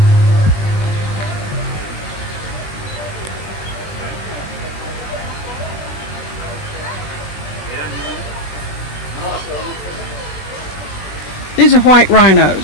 These are white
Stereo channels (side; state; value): right; late; 21 ms